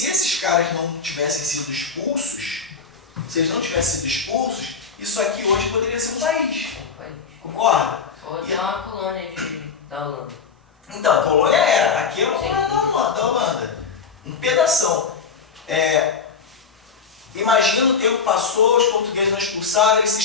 esses caras não tivessem sido expulsos, isso aqui hoje poderia ser um país. Concorda? Ou até uma colônia da Holanda. Então, a colônia era. Aqui é uma colônia da Holanda. Um pedação. Imagina o tempo passou, os portugueses não expulsaram, eles se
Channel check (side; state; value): right; quieter; 5.7 dB